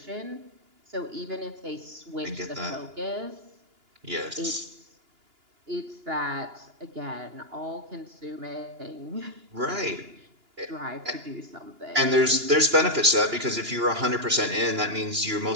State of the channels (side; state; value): left; late; 2.9 ms